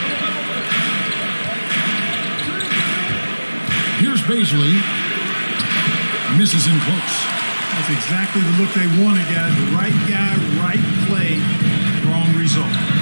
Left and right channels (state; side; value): inverted; both; correlation -1.00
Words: Here's Baisley. Misses in close. That's exactly the look they wanted, guys. The right guy, right play, wrong result.